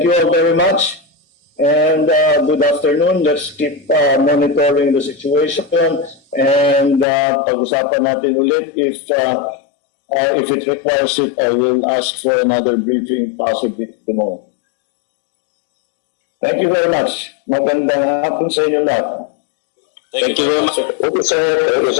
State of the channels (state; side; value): drops out; right; at 7.1 s